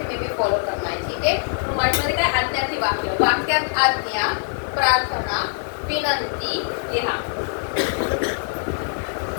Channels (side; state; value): right; silent; 64 dB below the other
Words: में भी फॉलो करना है. ठीक है. तो मराठीमध्ये काय? आज्ञार्थी वाक्य. वाक्यात आज्ञा, प्रार्थना, विनंती लिहा.